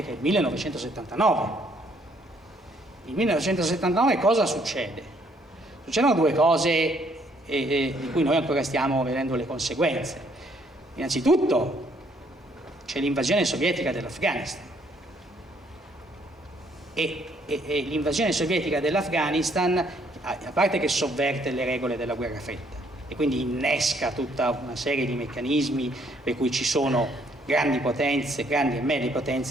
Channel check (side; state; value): both; normal; correlation 0.67